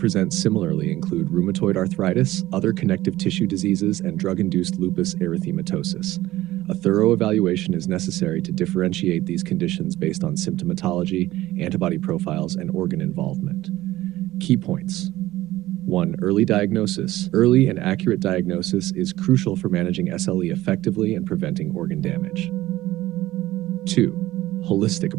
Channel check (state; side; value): quieter; left; 16.3 dB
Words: similarly include rheumatoid arthritis, other connective tissue diseases, and drug-induced lupus erythematosus. A thorough evaluation is necessary to differentiate these conditions based on symptomatology, antibody profiles, and organ involvement. Key points. 1. Early diagnosis. Early and accurate diagnosis is crucial for managing SLE effectively and preventing organ damage. 2. Holistic